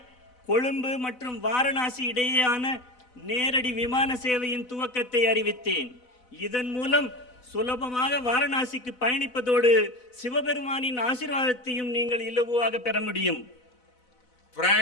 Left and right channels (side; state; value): right; late; 4.0 ms